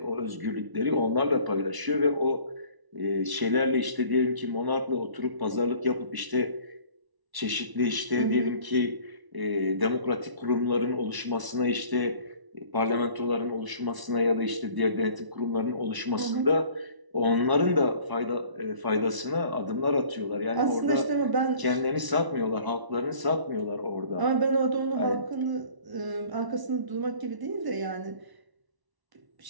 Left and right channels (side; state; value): left; late; 1.0 ms